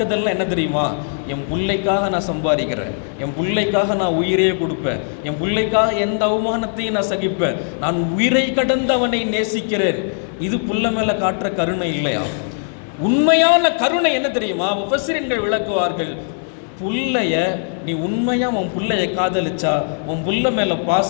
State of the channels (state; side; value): silent; right; 66 dB below the other